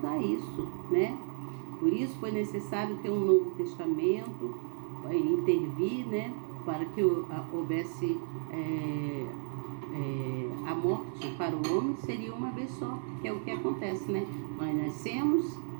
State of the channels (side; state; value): left; silent; 56 dB below the other